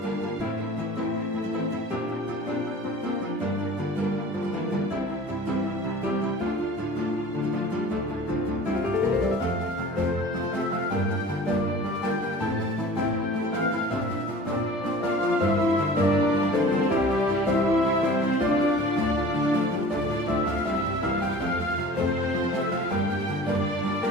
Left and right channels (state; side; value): normal; both; correlation 0.42